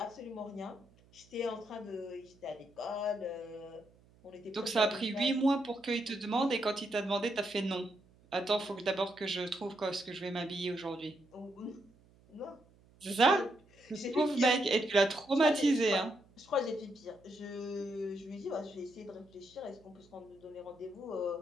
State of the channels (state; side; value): noise; right; hum, 28 dB below the sound